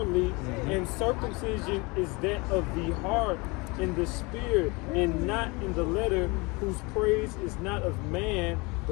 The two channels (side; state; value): right; quieter; 26.6 dB